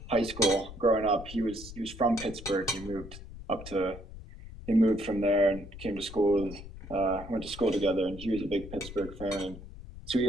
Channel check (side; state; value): left; noise; rumble, 14 dB below the sound